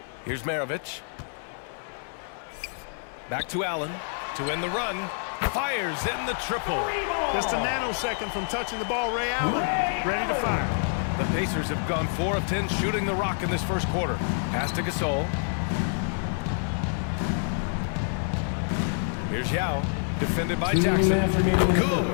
Here's Maravich. Back to Allen to end the run. Fires in the triple. Just a nanosecond from touching the ball, Ray Allen, ready to fire. The Pacers have gone 4 of 10 shooting the rock in this first quarter. Pass to Gasol. Here's Yao, defended by Jackson.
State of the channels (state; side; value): silent; right; 56 dB below the other